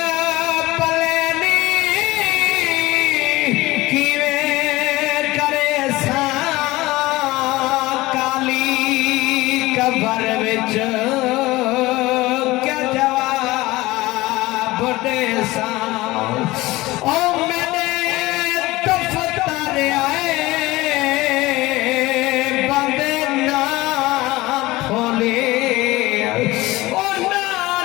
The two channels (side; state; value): right; quieter; 19.4 dB